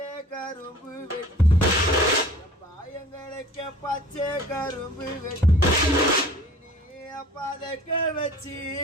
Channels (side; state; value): both; normal; correlation 0.47